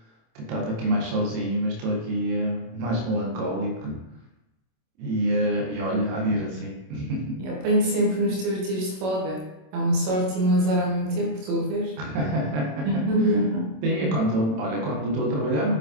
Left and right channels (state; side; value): late; left; 27 ms